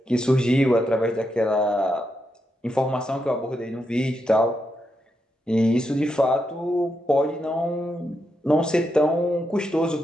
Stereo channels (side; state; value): both; normal; correlation 0.83